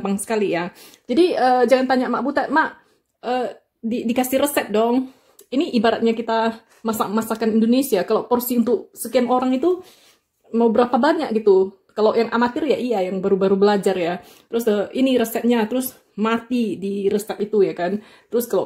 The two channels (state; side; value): identical; both; correlation 1.00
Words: sekali ya. Jadi jangan tanya Mak Butet, Mak dikasih resep dong. Ini ibaratnya kita masak masakan Indonesia, kalau porsi untuk sekian orang itu mau berapa banyak gitu. Kalau yang amatir ya iya, yang baru-baru belajar ya. Terus ini resepnya, terus mati di resep itu ya kan. Terus kalau